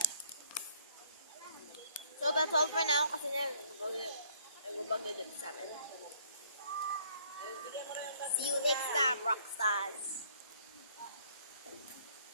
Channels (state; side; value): inverted; both; correlation -0.62